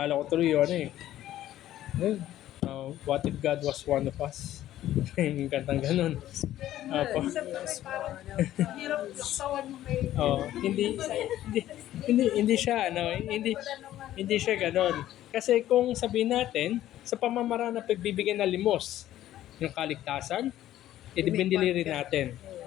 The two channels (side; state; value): right; quieter; 13.2 dB